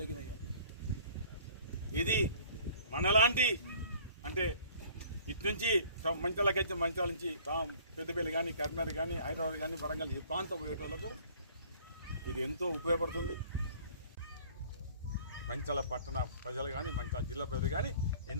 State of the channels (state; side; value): inverted; both; correlation -0.51